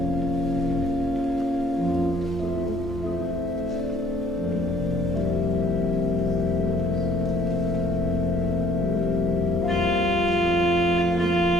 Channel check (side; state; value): right; noise; hum, 15 dB below the sound